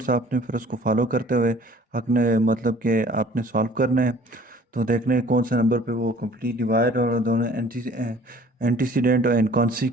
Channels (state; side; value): normal; both; correlation 0.52